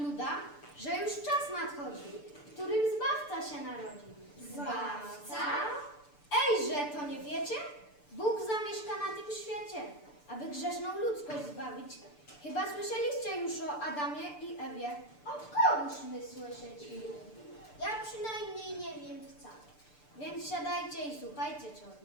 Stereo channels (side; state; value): right; late; 6.8 ms